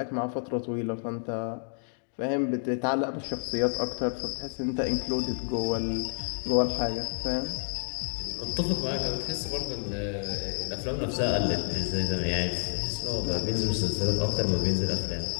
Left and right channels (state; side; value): silent; right; digital silence